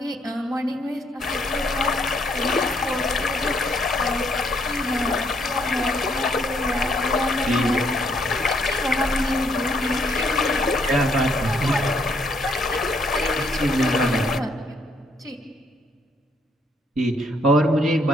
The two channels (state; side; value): normal; both; correlation 0.70